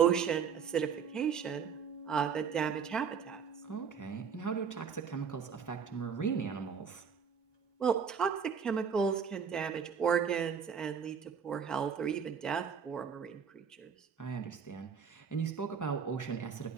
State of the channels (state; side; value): quieter; left; 6.7 dB